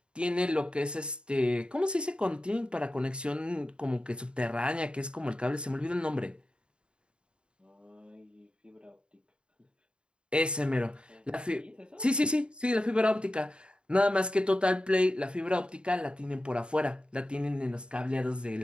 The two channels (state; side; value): late; left; 0.053 ms